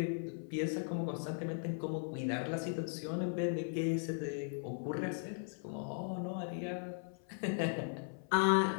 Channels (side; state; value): right; silent; 52 dB below the other